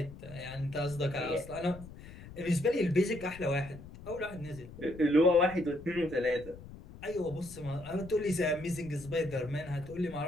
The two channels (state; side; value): noise; left; rumble, 16 dB below the sound